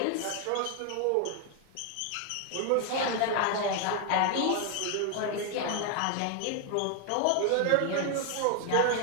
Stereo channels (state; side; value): different; both; correlation 0.01